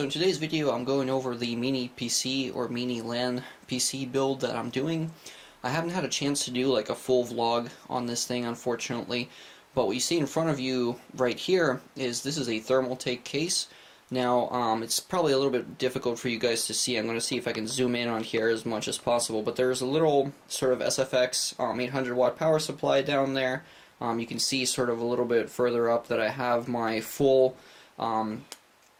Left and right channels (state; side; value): identical; both; correlation 1.00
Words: in today's video I'm going over the mini PC or mini LAN PC build that I'm doing. I haven't had a chance to do like a full vlog on this thing, unfortunately, but what you see in front of you right here is this is a thermal take case. Now it's probably a little bit difficult for you guys to see. I'm going to see if I can zoom in on here as much as possible, but there's a little sort of SFX 800 watt power supply down there. You can see sort of a little bit further up that I have my full